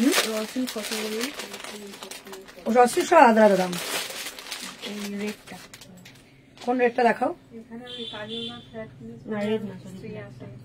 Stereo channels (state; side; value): identical; both; correlation 1.00